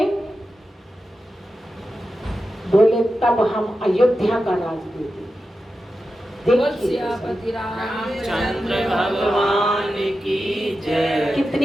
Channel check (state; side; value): normal; both; correlation 0.91